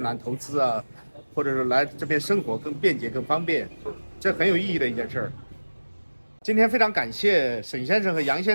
投资啊，或者是来这边生活更便捷更方便，这很有意义的一件事儿。今天非常感谢沈先生和杨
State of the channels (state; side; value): inverted; both; correlation -1.00